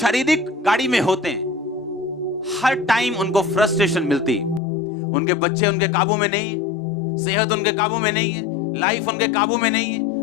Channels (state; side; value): drops out; right; at 4.6 s